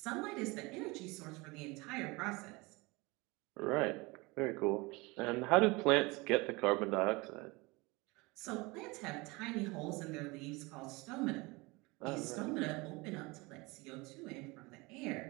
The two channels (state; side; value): quieter; left; 24.6 dB